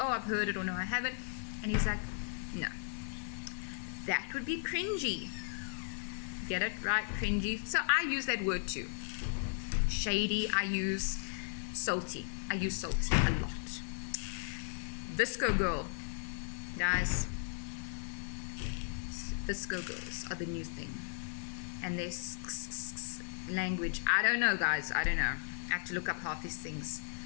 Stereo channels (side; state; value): right; silent; digital silence